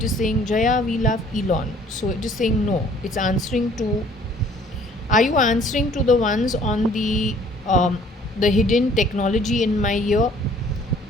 is saying Jaya, we love Elon. So it is saying no. It's answering to. Are you answering to the ones on the hidden technology in my ear?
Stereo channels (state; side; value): normal; both; correlation 0.56